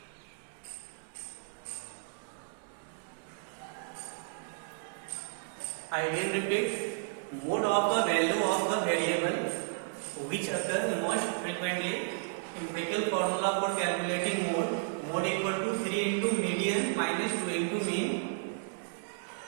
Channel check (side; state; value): left; silent; digital silence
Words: I again repeat, mode of the value of the variable which occur most frequently। empirical formula for calculating mode equal to 3 into median minus 2 into mean।